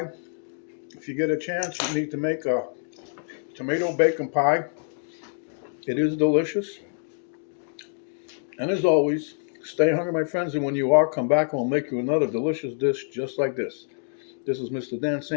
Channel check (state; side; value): silent; right; 61 dB below the other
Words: If you get a chance, you need to make a tomato bacon pie. It is delicious. And as always, stay hungry, my friends, and when you are, come back and we'll make you another delicious dish just like this. This is Mr. Dan